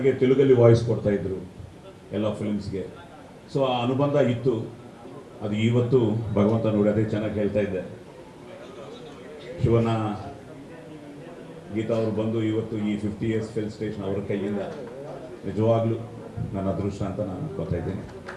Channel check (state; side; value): identical; both; correlation 1.00